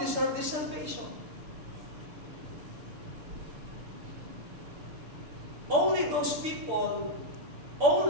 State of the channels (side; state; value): left; late; 6.8 ms